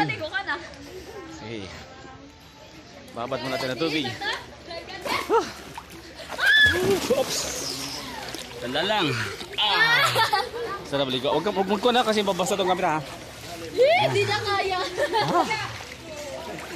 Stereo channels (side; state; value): both; identical; correlation 1.00